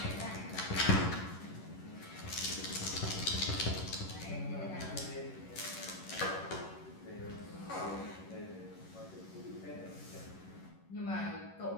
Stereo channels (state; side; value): late; right; 11 ms